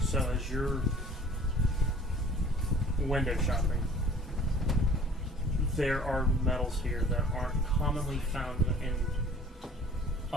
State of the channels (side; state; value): both; normal; correlation 0.50